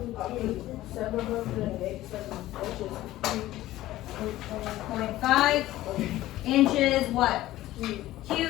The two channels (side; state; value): right; quieter; 15.5 dB